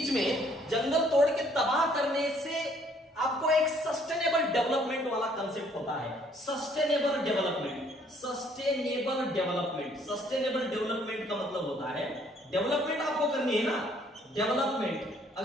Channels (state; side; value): normal; both; correlation 0.63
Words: में जंगल तोड़ के तबाह करने से आपको एक सस्टेनेबल डेवलपमेंट वाला कंसेप्ट होता है। Sustainable development, sustainable development, sustainable development का मतलब होता है, डेवलपमेंट आपको करनी है ना, डेवलपमेंट।